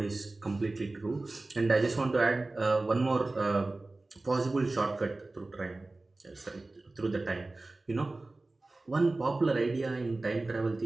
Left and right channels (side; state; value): left; quieter; 3.1 dB